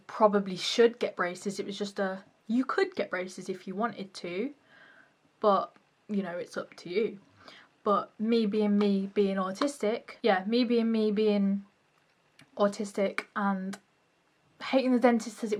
probably should get braces. It was just a, you could get braces if you wanted to. But, you know, it's up to you. But me being autistic, yeah, me being autistic and hating the dentist as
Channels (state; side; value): identical; both; correlation 1.00